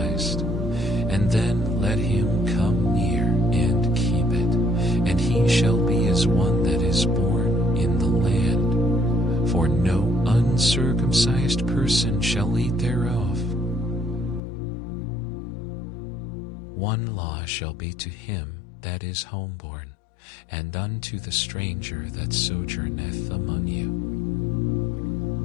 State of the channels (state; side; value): drops out; right; at 14.4 s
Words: and then let him come near and keep it, and he shall be as one that is born in the land, for no uncircumcised person shall eat thereof. One law shall be to him that is homeborn, and unto the stranger that sojourneth among you.